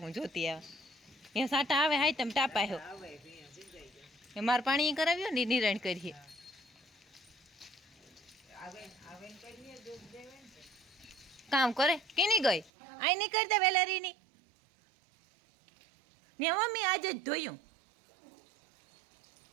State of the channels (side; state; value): left; drops out; at 12.7 s